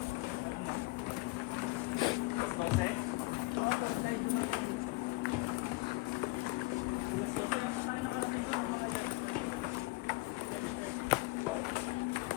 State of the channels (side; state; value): right; quieter; 23.0 dB